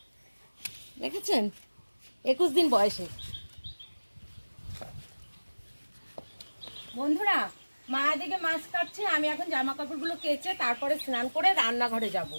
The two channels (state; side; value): inverted; both; correlation -1.00